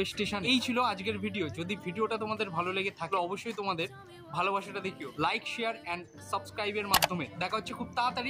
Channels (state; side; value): identical; both; correlation 1.00